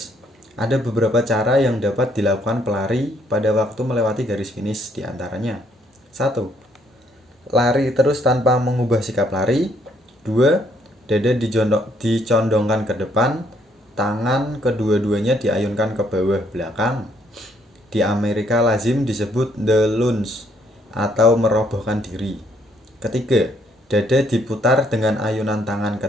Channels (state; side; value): normal; both; correlation 0.69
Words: Ada beberapa cara yang dapat dilakukan pelari pada waktu melewati garis finish, diantaranya 1. Lari terus tanpa mengubah sikap lari. 2. Dada dicondongkan ke depan, tangan kedua-duanya diayunkan ke bawah belakang. Di Amerika lazim disebut the lunge atau merobohkan diri. Ketiga, dada diputar dengan ayunan tangan